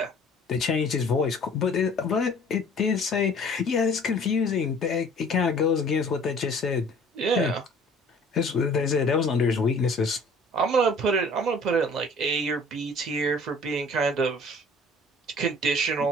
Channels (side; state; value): both; normal; correlation 0.51